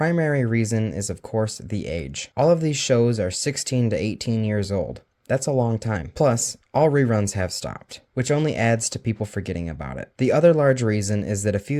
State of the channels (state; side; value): identical; both; correlation 1.00